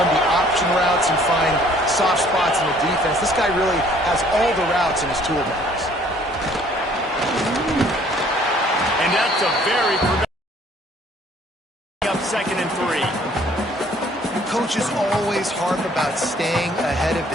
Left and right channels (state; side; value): normal; both; correlation 0.58